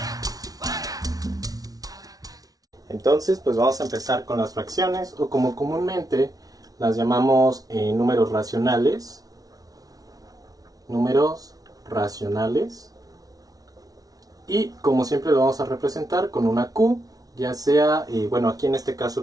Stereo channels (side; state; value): left; late; 0.18 ms